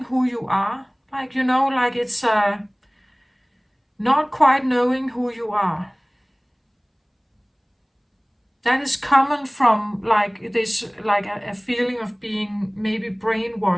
who you are. Like, you know, like it's not quite knowing who you are. That is common from like this, like a feeling of being maybe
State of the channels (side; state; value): both; identical; correlation 1.00